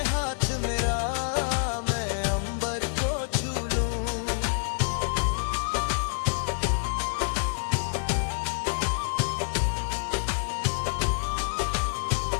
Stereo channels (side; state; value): right; silent; digital silence